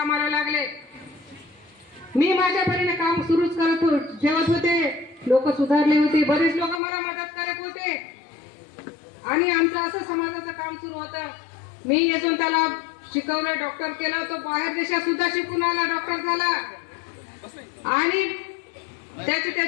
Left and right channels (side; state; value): right; drops out; at 6.8 s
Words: लागले. मी माझ्या परीने काम सुरूच ठेवत होते. लोक सुधारले होते, बरेच लोक मला मदत करत होते आणि आमचं असं समाजाचं काम सुरू होतं. मी यशवंताला शिकवलं, डॉक्टर केलं. तो बाहेर देशात सुद्धा शिकून आला, डॉक्टर झाला आणि